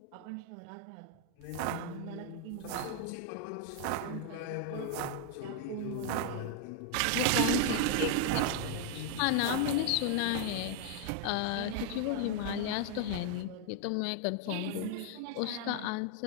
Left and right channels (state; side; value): different; both; correlation 0.00